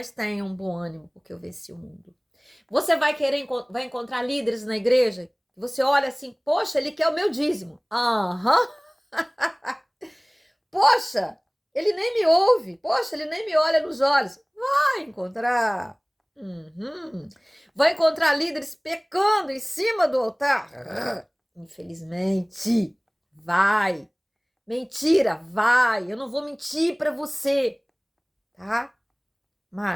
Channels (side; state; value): both; identical; correlation 1.00